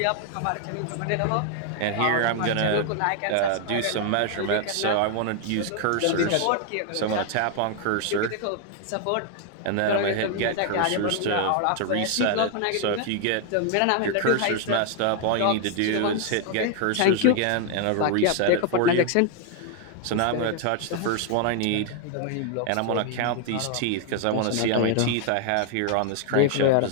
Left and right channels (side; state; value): both; different; correlation 0.00